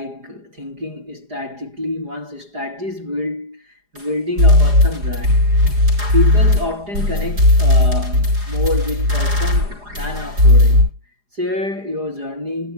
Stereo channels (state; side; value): late; left; 4.9 ms